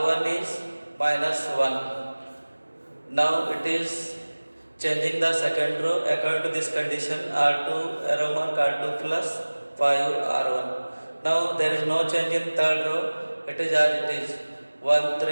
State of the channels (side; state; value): both; inverted; correlation -1.00